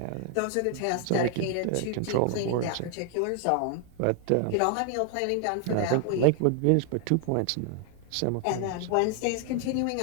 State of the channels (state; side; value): different; both; correlation 0.00